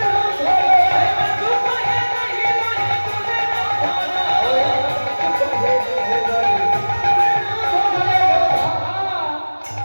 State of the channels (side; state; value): both; inverted; correlation -1.00